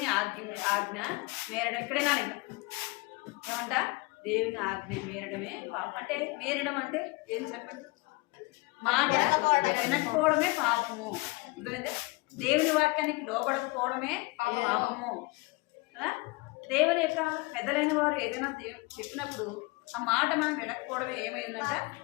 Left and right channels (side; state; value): right; quieter; 25.9 dB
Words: ఆజ్ఞ మేరడం. ఇక్కడేనా ఇంకా ఏమంట? దేవుని ఆజ్ఞ మేరడమే పాపం. అంటే మేరడం అంటే ఏం చెప్పండి? మాట వినకపోవడమే పాపము. అర్థమైందే? దేవుని వాక్యానికి లోబడకపోవడమే పాపము కదా? దేవుని యొక్క పెద్దలైన వారు ఏదైనా చెప్పినప్పుడు ఆ మాట మనం వినకపోవడమే ఏమైందంట?